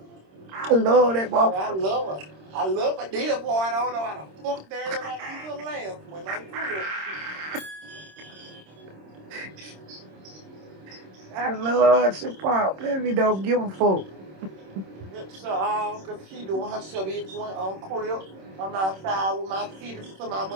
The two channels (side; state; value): left; late; 26 ms